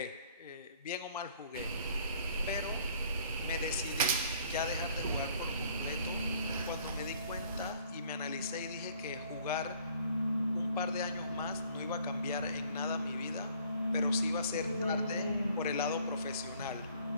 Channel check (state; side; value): inverted; both; correlation -0.58